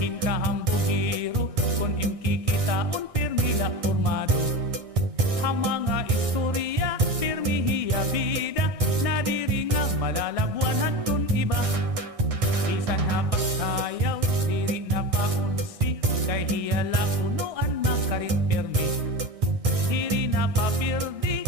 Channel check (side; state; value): left; late; 1.6 ms